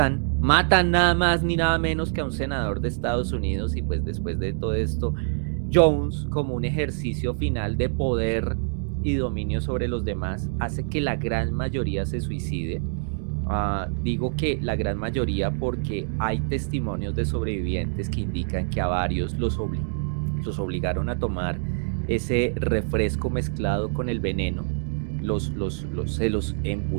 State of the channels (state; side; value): silent; left; digital silence